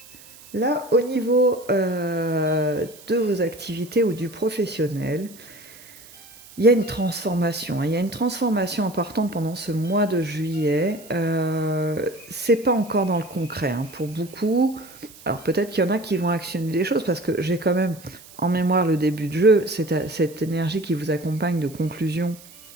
là, au niveau de vos activités ou du professionnel, il y a une transformation. Il y a une transformation importante pendant ce mois de juillet. C'est pas encore dans le concret hein, pour beaucoup. Alors peut-être qu'il y en a qui vont actionner des choses parce que j'ai quand même en mémoire le début de jeu, cette énergie qui vous accompagne de conclusion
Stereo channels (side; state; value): right; noise; hiss, 21 dB below the sound